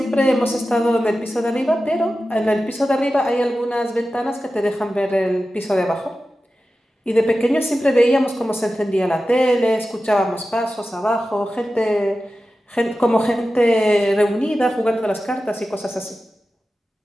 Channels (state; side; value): normal; both; correlation 0.94